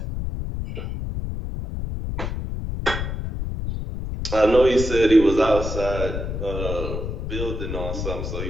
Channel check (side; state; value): left; noise; rumble, 4 dB below the sound